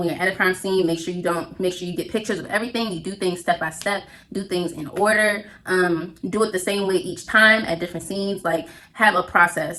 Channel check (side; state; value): both; identical; correlation 1.00